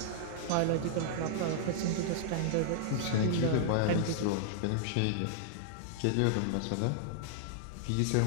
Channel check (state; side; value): different; both; correlation -0.01